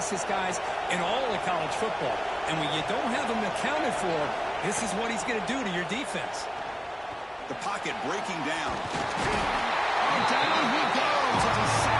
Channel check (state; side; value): identical; both; correlation 1.00